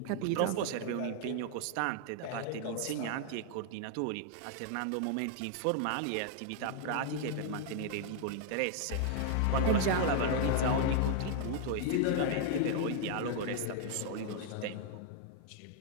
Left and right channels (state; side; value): different; both; correlation 0.00